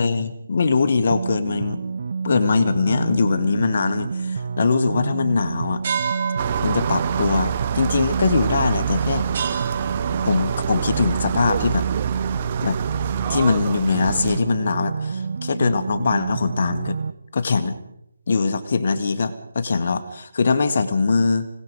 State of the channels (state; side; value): inverted; both; correlation -0.82